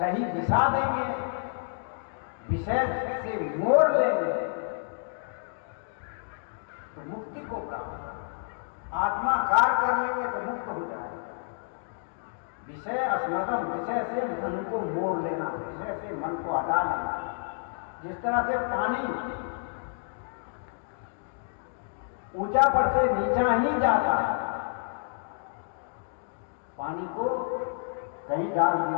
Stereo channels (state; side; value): silent; right; digital silence